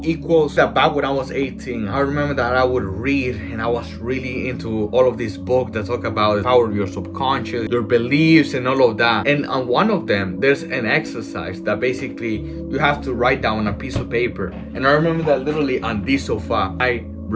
equals that. Back when I was 18, I remember that I would read and I was really into all of these books that talk about the power of your subconscious, your beliefs, and all of that. And on one of them, there's an exercise that basically you have to write down on a piece of paper. And I remember that literally on this sofa, I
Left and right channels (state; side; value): identical; both; correlation 1.00